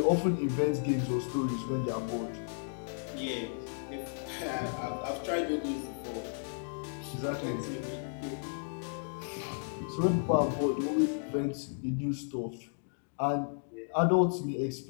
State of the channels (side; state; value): right; silent; digital silence